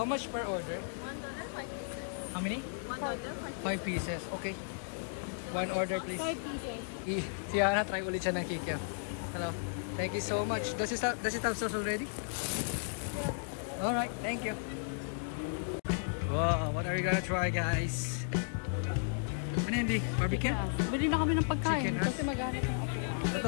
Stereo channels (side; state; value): right; silent; digital silence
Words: much per order? $1, 5 pieces. How many? $1, 5 pieces. Okay. One order please. 5 pieces. Si Hana, try ulit siya ng kikiam. Hello. Thank you so much. Does it have sauce already? Alright, thank you. Wow, what are you gonna try guys? Ano yan, Di? Barbecue? Bili na kami ng pagkain. Chicken, ha?